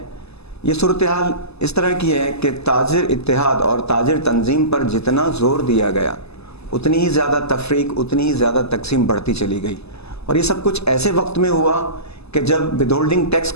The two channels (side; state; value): right; late; 0.79 ms